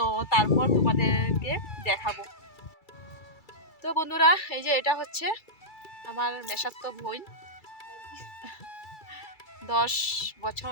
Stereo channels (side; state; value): right; late; 2.3 ms